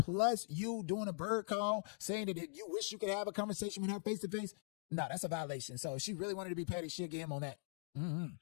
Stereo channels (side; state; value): right; silent; digital silence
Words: you doing a bird call, saying that you wish you could have a conversation with her face to face, no, that's a violation. So if she really wanted to be petty, she'll get him on that.